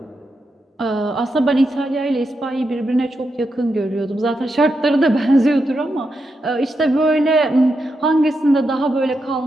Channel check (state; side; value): normal; both; correlation 0.85